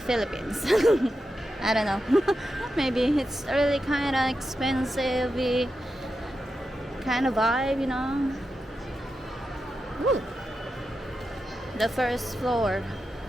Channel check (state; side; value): normal; both; correlation 0.89